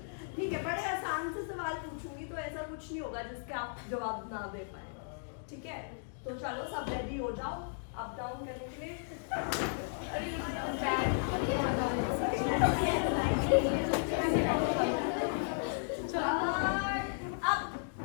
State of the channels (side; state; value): right; silent; digital silence